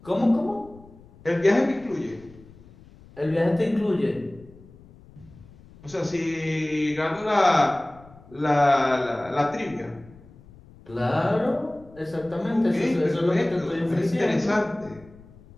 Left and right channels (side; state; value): left; noise; rumble, 23 dB below the sound